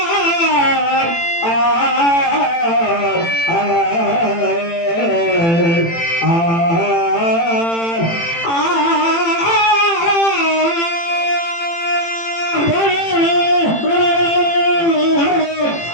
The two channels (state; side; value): late; right; 18 ms